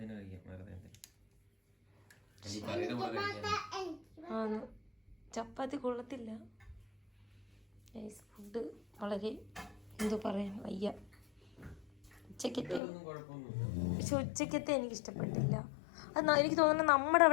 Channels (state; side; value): drops out; right; at 12.8 s